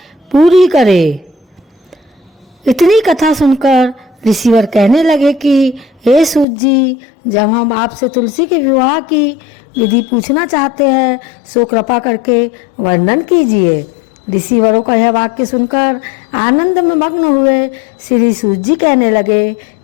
पूरी करे। इतनी कथा सुनकर ऋषिवर कहने लगे कि हे सूत जी, जब हम आपसे तुलसी के विवाह की विधि पूछना चाहते हैं सो कृपा करके वर्णन कीजिए। ऋषिवरों का यह वाक्य सुनकर आनंद में मग्न हुए श्री सूत जी कहने लगे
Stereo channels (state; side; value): drops out; right; at 6.5 s